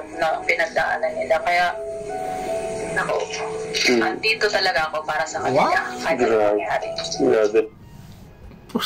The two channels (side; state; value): both; identical; correlation 1.00